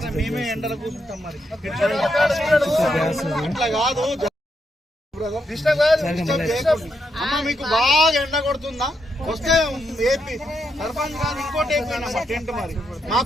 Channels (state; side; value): normal; both; correlation 0.80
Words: మేమే ఎండలో కూర్చుంటాం. మరి అట్లా కాదు. అమ్మ మీకు బాగా ఎండ కొడుతుందా? వస్తే ఏపీ సర్పంచ్ కాదు ఇంకోటి అయిపోయినా టెంట్ మరి